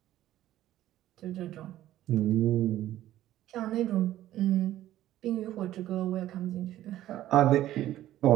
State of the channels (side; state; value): left; quieter; 13.6 dB